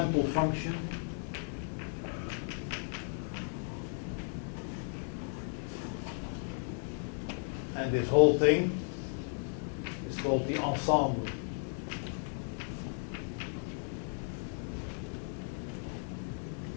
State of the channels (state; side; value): silent; right; 54 dB below the other